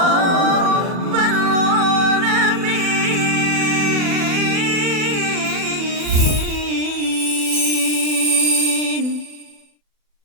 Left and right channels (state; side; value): late; left; 40 ms